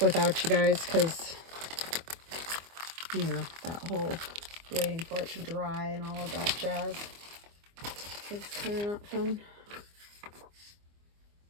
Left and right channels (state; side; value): late; left; 24 ms